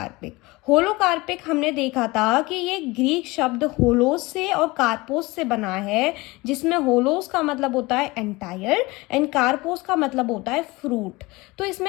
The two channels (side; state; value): right; quieter; 22.4 dB